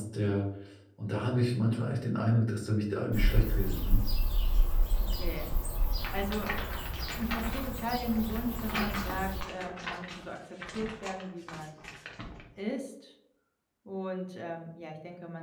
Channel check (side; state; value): both; identical; correlation 1.00